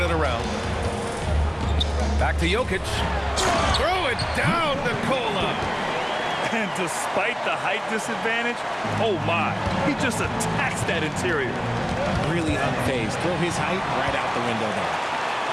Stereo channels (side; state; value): both; identical; correlation 1.00